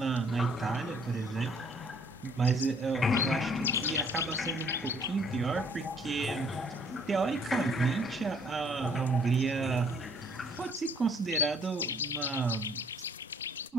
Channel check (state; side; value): normal; both; correlation 0.61